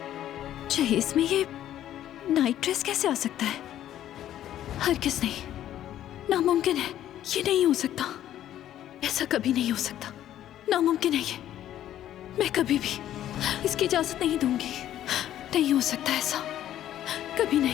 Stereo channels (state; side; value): quieter; right; 11.9 dB